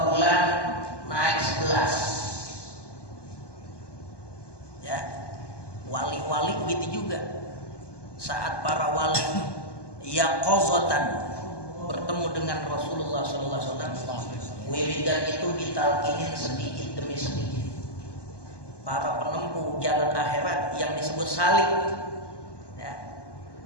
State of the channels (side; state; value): right; late; 1.2 ms